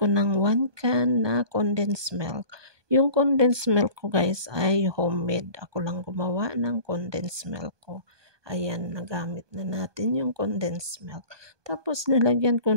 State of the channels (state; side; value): late; left; 1.2 ms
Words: ng 1 can na condensed milk. Yung condensed milk ko guys ay homemade. Ako lang gumawa ng condensed milk ko. Ayan, nagamit na natin yung condensed milk. Tapos nilagyan